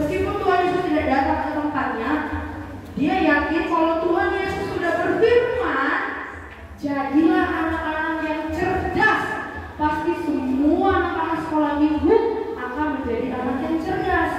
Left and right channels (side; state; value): both; identical; correlation 1.00